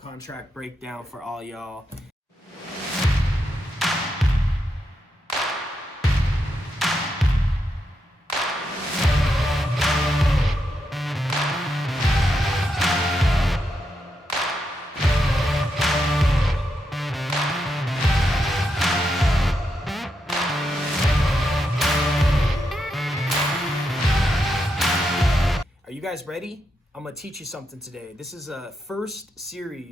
breakdown for all y'all. Are you guys ready? I'm gonna teach you something today. This is a first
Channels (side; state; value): both; normal; correlation 0.83